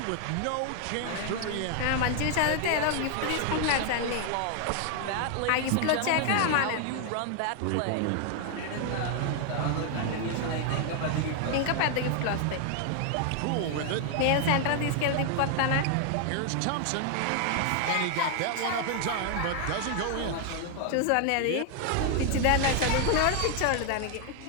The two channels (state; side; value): different; both; correlation 0.00